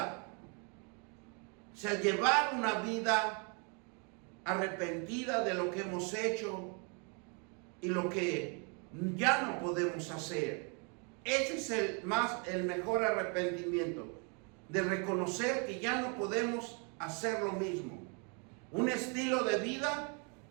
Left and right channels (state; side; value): quieter; left; 35.9 dB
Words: O sea, llevar una vida arrepentida de lo que hemos hecho y lo que ya no podemos hacer. Ese es el mejor arrepentimiento, de reconocer que ya no podemos hacer lo mismo. Un estilo de vida,